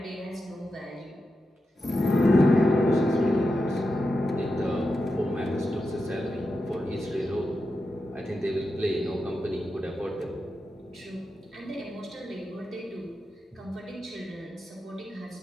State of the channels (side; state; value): both; normal; correlation 0.89